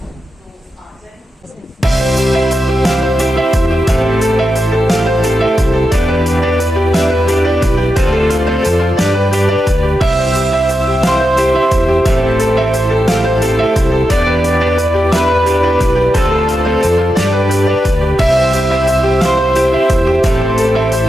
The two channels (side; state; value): both; normal; correlation 0.88